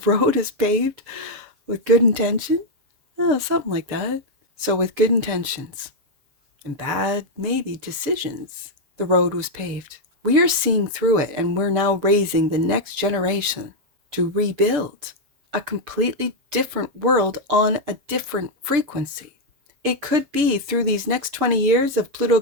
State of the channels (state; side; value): late; left; 6.8 ms